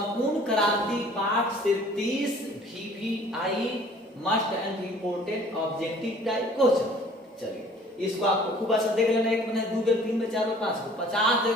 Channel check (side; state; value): both; normal; correlation 0.52